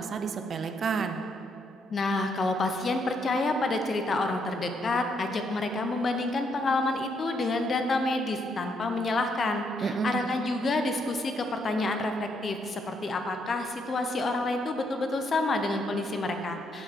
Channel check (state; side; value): normal; both; correlation 0.75